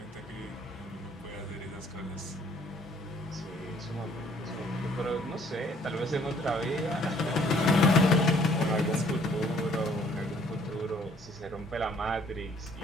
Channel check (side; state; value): both; normal; correlation 0.60